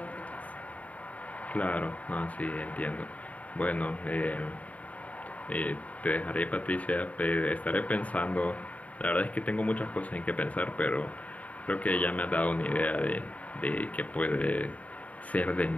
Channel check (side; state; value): right; late; 0.069 ms